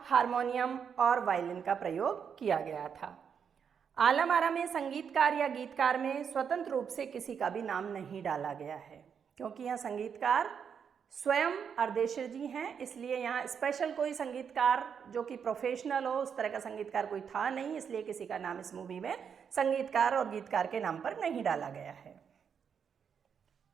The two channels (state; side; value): quieter; left; 7.2 dB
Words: हारमोनियम और वायलिन का प्रयोग किया गया था। आलम आरा में संगीतकार या गीतकार में स्वतंत्र रूप से किसी का भी नाम नहीं डाला गया है, क्योंकि यह संगीतकार स्वयं अर्देशिर जी हैं, इसलिए यहाँ स्पेशल कोई संगीतकार जो कि प्रोफेशनल हो उस तरह का संगीतकार कोई था नहीं, इसलिए किसी का नाम इस मूवी में संगीतकार और गीतकार के नाम पर नहीं डाला गया है।